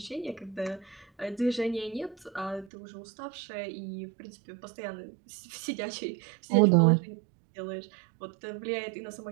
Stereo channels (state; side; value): drops out; left; at 2.7 s